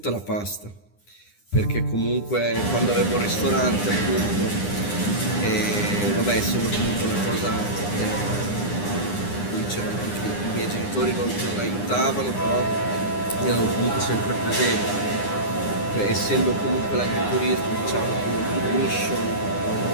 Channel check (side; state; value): right; late; 9.8 ms